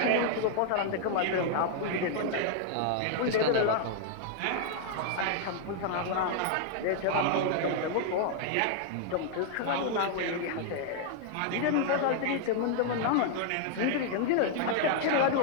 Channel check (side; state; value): both; different; correlation 0.00